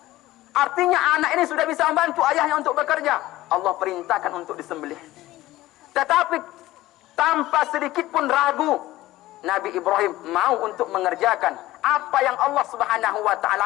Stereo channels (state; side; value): quieter; right; 16.6 dB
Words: Artinya anak ini sudah bisa membantu ayahnya untuk bekerja. Allah perintahkan untuk disembelih. Tetapi tanpa sedikit pun ragu, Nabi Ibrahim mau untuk mengerjakan apa yang Allah Subhanahu wa taala